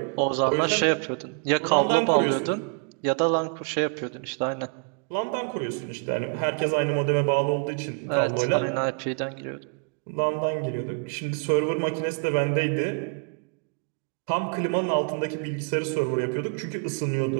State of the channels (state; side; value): quieter; left; 39.2 dB